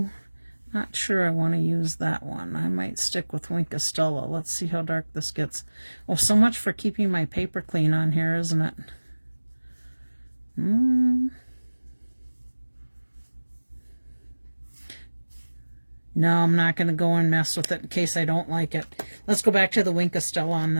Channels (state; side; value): inverted; both; correlation -1.00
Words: not sure I want to use that one. I might stick with Schudi-SHE. Let's see how dark this gets. Oh, so much for keeping my paper clean on here, isn't it? No, I'm not going to go and mess with it in case I don't like it. Let's go back to the Schudi-SHE on